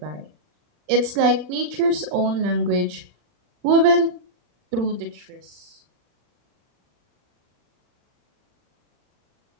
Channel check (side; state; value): left; late; 40 ms